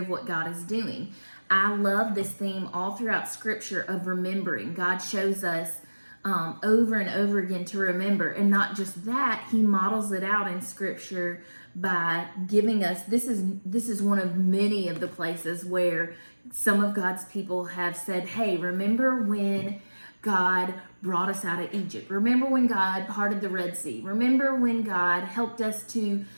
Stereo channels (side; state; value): both; inverted; correlation -1.00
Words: what God is doing. I love this theme all throughout Scripture of remembering. God shows us over and over again to remember, and not just that, he models it out in Scripture by giving us, this is one of many of the places where some of God's people have said, hey, remember when God brought us out of Egypt. Remember when God parted the Red Sea. Remember when God helped us to